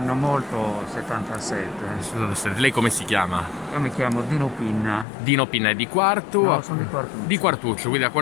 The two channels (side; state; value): right; drops out; at 5.1 s